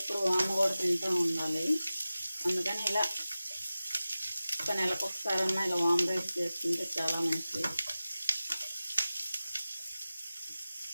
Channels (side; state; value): both; inverted; correlation -0.96